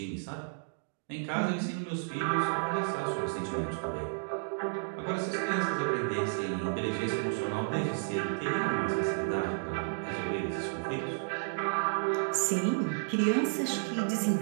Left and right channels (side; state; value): left; silent; digital silence